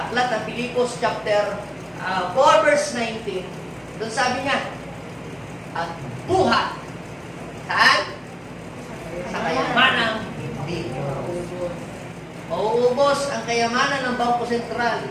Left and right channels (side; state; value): both; identical; correlation 1.00